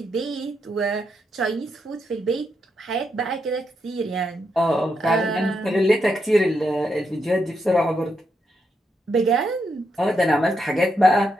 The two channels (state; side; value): normal; both; correlation 0.81